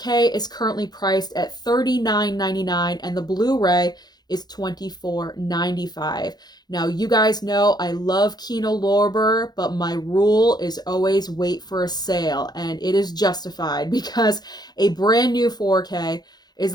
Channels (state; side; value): late; right; 0.20 ms